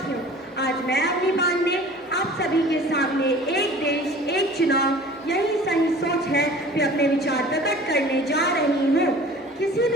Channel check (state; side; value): normal; both; correlation 0.45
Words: आज मैं अपनी बात में आप सभी के सामने एक देश एक चुनाव यही सही सोच है कि अपने विचार प्रकट करने जा रही हूँ। किसी